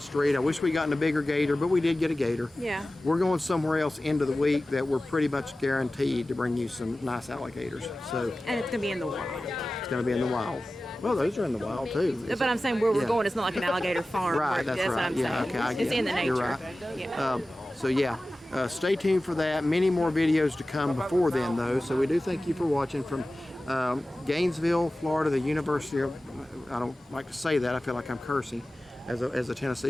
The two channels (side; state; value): both; normal; correlation 0.96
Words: street. I wish we gotten a bigger gator, but we did get a gator. Yeah. We're going somewhere else into the week that we're pretty much guaranteed to bring you some nice alligators. So And it's gonna be in the wild. it's going to be in the wild. Well, those are in the wild too. But I'm saying where we're Yeah. going, it's not like an alligator farm. Right, that's what right. I'm Yeah, saying. okay, I It's get in the it. nature. You're right. Yeah. So yeah, stay tuned for that. Many more videos to come before then, though. So we do thank you for watching from Gainesville, Florida, the University of. I don't like to say that. I feel like I'm cursing as a